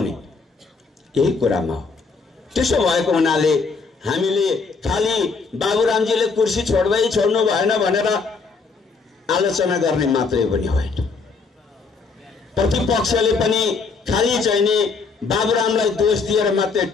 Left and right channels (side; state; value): right; quieter; 4.6 dB